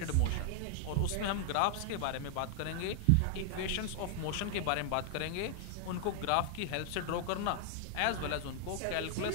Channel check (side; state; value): both; different; correlation 0.00